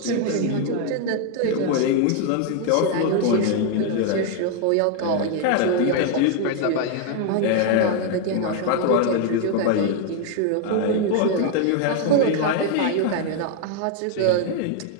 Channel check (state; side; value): different; both; correlation 0.01